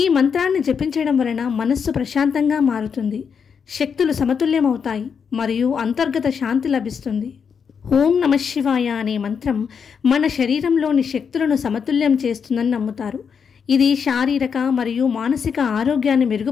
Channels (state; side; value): quieter; right; 6.6 dB